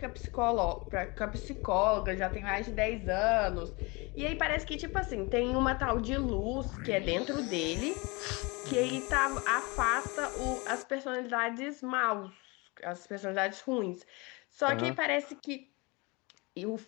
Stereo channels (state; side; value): quieter; right; 26.9 dB